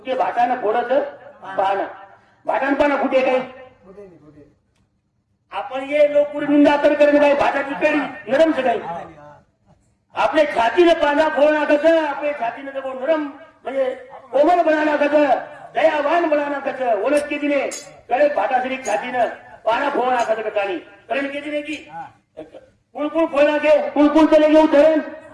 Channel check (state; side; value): identical; both; correlation 1.00